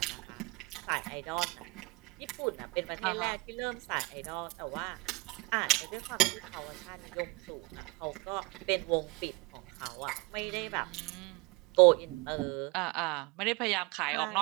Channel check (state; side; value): quieter; left; 24.7 dB